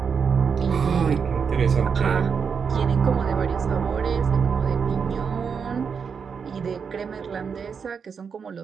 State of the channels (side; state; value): left; quieter; 6.2 dB